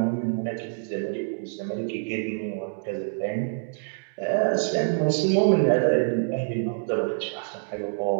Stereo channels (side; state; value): left; silent; digital silence